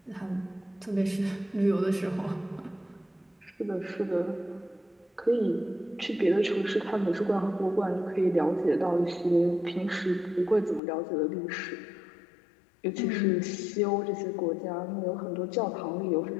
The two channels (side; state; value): right; drops out; at 10.8 s